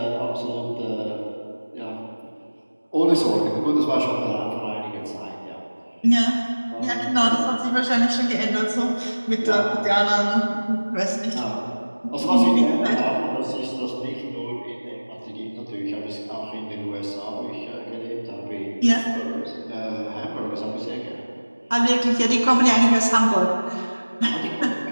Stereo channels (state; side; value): inverted; both; correlation -1.00